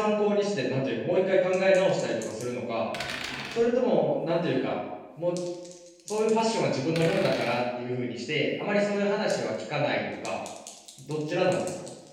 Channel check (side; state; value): both; identical; correlation 1.00